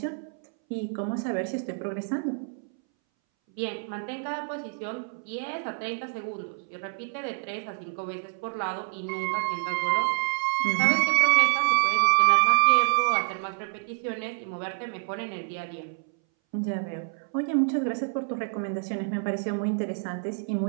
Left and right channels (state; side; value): silent; left; 60 dB below the other